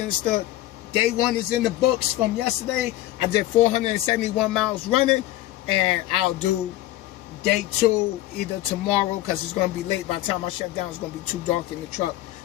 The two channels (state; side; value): quieter; right; 15.4 dB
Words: Day 1 is in the books from yesterday. I did 471 miles running, and I'll do day 2 either tomorrow, because it's going to be late. By the time I shut down, it's going to be too dark in the truck